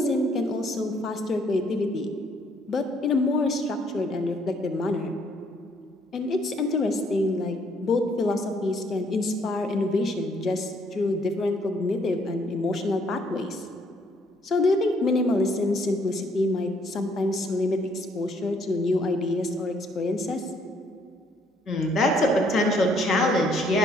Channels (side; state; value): both; normal; correlation 0.67